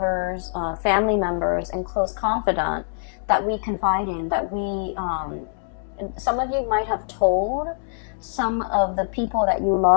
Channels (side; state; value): right; silent; digital silence